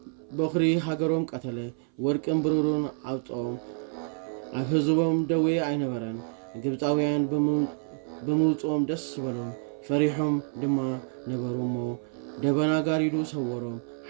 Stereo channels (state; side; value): silent; left; 58 dB below the other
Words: በኽሪ ሃገሮም ቀተለ። ወርቅን ብሩርን ኣውፅኦም። ኣብ ህዝቦም ደዌ ኣይነበረን። ግብፃውያን ብምውፅኦም ደስ በሎም። ፈሪሖም ድማ ነበሩ እሞ ደበና ጋሪዱ ሰወሮም።